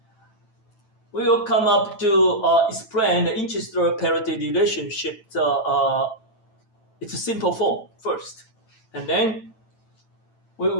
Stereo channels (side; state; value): right; late; 9.0 ms